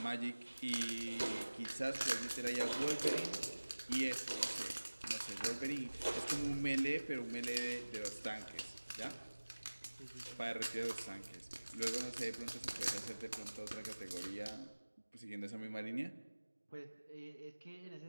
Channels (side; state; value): both; inverted; correlation -1.00